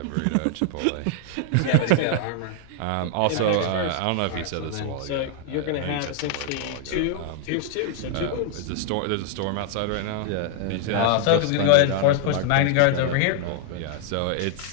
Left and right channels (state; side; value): different; both; correlation 0.00